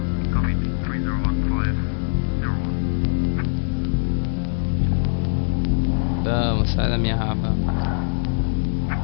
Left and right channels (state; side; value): silent; right; digital silence